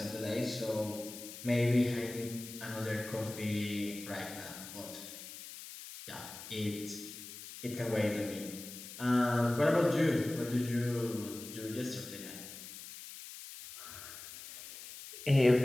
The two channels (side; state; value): left; noise; hiss, 13 dB below the sound